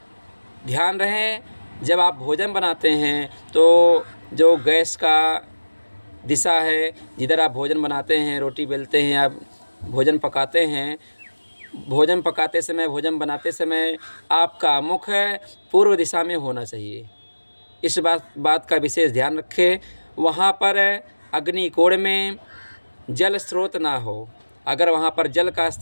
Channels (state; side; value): inverted; both; correlation -1.00